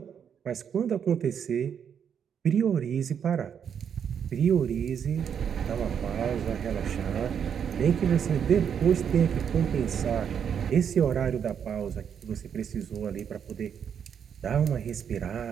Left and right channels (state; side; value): quieter; left; 7.9 dB